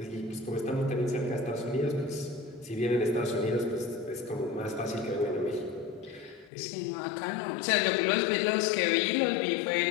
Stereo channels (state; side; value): drops out; right; at 6.5 s